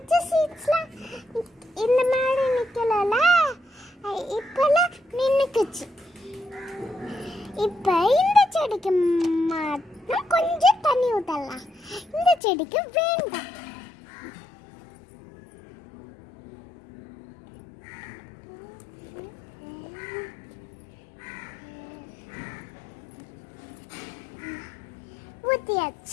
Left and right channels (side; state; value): right; drops out; at 12.4 s